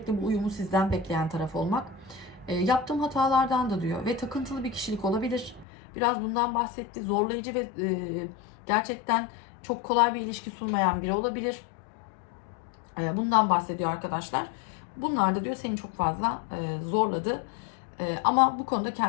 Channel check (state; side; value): drops out; right; at 5.7 s